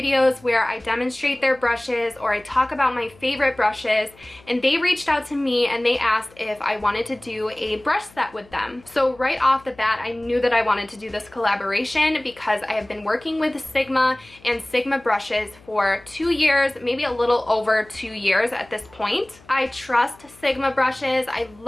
where I demonstrate their brushes or I talk about my favorite brushes, and they reached out to me and they asked if I wanted to do a brush set with them. So right off the bat, I knew that I wanted to do this collaboration because I have been working with Sigma and Sigma brushes for 2 years, maybe a little over 2 years at this point. I trust Sigma brushes. I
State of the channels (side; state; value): left; noise; hum, 26 dB below the sound